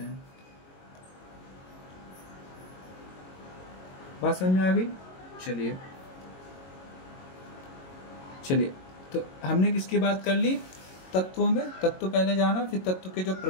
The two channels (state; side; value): late; right; 22 ms